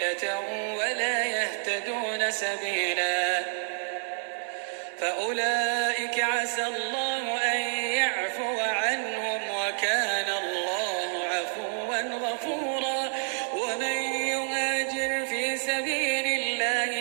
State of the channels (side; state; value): left; silent; 58 dB below the other